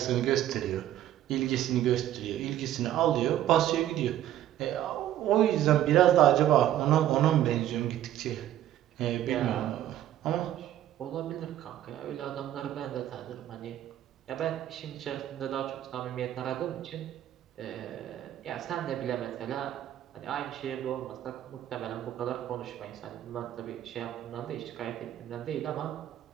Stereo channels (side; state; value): left; quieter; 12.3 dB